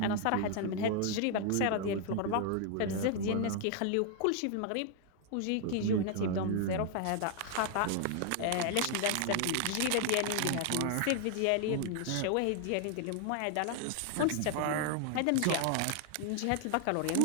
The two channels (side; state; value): both; different; correlation 0.00